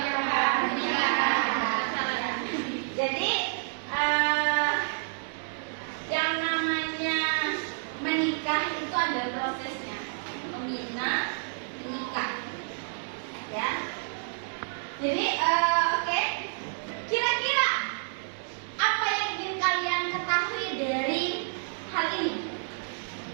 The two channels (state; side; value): silent; left; digital silence